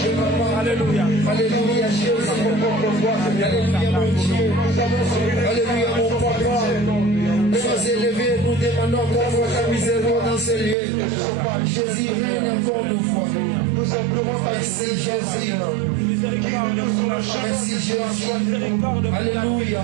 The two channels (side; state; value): left; drops out; at 10.8 s